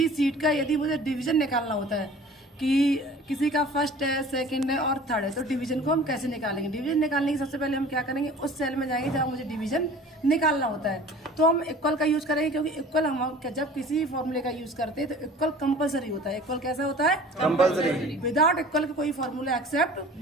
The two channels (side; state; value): both; normal; correlation 0.45